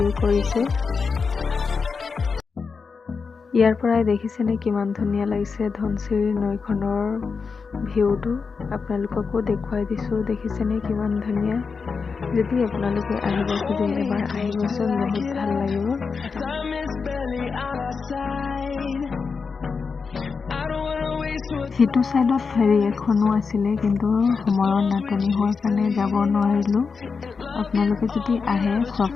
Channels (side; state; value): right; quieter; 5.1 dB